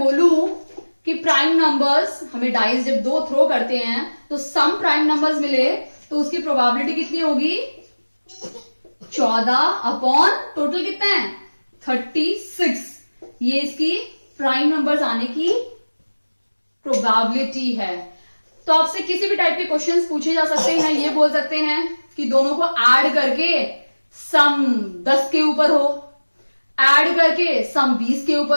कि प्राइम नंबर्स हमें डाइस जब 2 थ्रो करते हैं तो सम प्राइम नंबर्स मिले, तो उसकी प्रोबेबिलिटी कितनी होगी, 14 टोटल कितना है 36। ये इसकी प्राइम नंबर्स आने की प्रोबेबिलिटी है। तो आपसे किसी भी टाइप के क्वेश्चंस पूछे जा सकते हैं। ये बोल सकते हैं कि दोनों को ऐड करके सम 10 के ऊपर हो, ऐड करके सम 20 के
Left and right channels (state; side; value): inverted; both; correlation -1.00